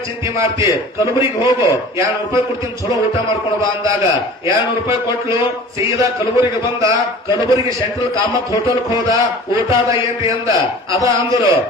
ಚಿಂತೆ ಮಾಡ್ತಿ, ಕಲಬುರಿಗೆ ಹೋಗು, 200 ರೂಪಾಯಿ ಕೊಡ್ತೀನಿ, ಚಲೋ ಊಟ ಮಾಡ್ಕೊಂಡು ಬಾ ಅಂದಾಗ 200 ರೂಪಾಯಿ ಕೊಟ್ಲು. ಸೀದಾ ಕಲಬುರಿಗೆ ಬಂದ. ಕಲಬುರಿಗೆ ಸೆಂಟ್ರಲ್ ಕಾಮತ್ ಹೋಟೆಲ್ ಹೋದ. ಊಟದ ಏನ್ರಿ ಅಂದ. ಅದ ಅಂದ್ರು.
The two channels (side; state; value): both; normal; correlation 0.42